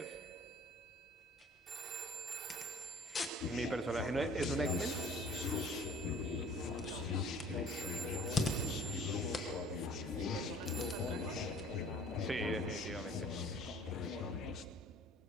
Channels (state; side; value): normal; both; correlation 0.51